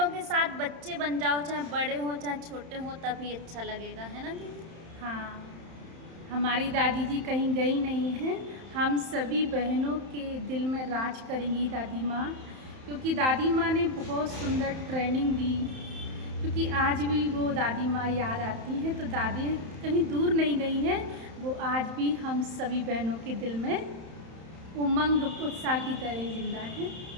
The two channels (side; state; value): left; late; 31 ms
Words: के साथ बच्चे बन जाओ, चाहे बड़े हों चाहे छोटे हों, तभी अच्छा लगेगा, है ना दीदी? हाँ, हमारी दादी जी कहीं गई नहीं हैं। हम सभी बहनों के दिल में राज करेंगी दादी माँ, क्योंकि दादी माँ ने बहुत सुंदर ट्रेनिंग दी। क्योंकि आज भी वो दादी माँ याद आती हैं, तो दादी कहीं दूर नहीं गई हैं, वो आज भी हम सभी बहनों के दिल में उमंग उत्साह की तरह जिंदा हैं